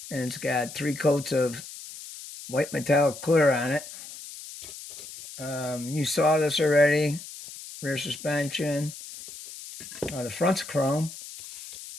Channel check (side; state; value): left; noise; hiss, 13 dB below the sound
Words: and it's got 3 coats of white metallic clear on it. You saw this already. Rear suspension. The front's chrome.